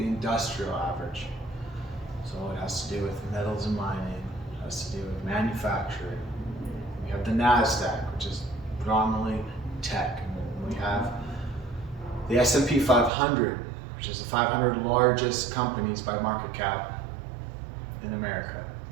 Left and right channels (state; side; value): drops out; left; at 13.1 s